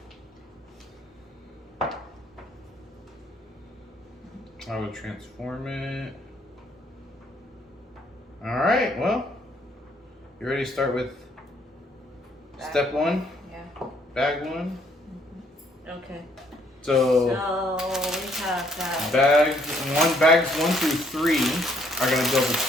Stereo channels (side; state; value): both; normal; correlation 0.67